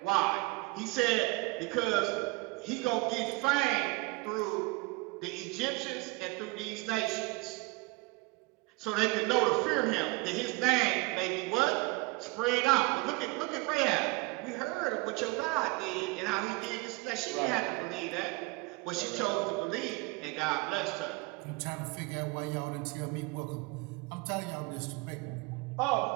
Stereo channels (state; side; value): quieter; left; 25.3 dB